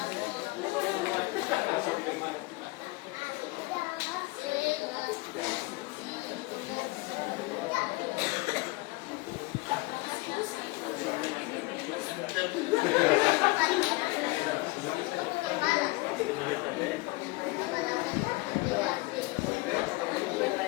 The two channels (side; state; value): right; quieter; 23.2 dB